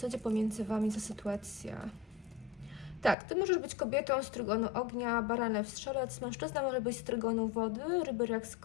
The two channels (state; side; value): drops out; right; at 3.2 s